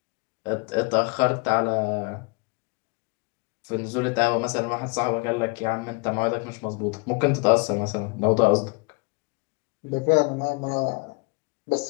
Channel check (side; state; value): right; quieter; 30.2 dB